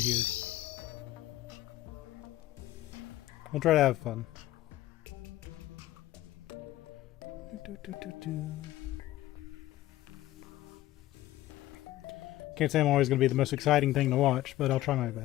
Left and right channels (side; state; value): right; quieter; 15.3 dB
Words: We'll try to have fun. Can't say I'm always going to be the most exciting thing to watch, but I'll try my